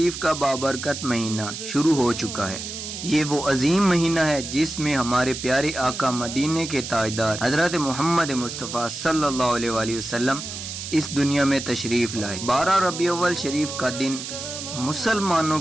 کا بابرکت مہینہ شروع ہو چکا ہے۔ یہ وہ عظیم مہینہ ہے جس میں ہمارے پیارے آقا مدینے کے تاجدار حضرت محمد مصطفیٰ صلی اللہ علیہ وآلہ وسلم اس دنیا میں تشریف لائے۔ 12 ربیع الاول شریف کا دن مسلمانوں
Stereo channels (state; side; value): noise; right; hiss, 8 dB below the sound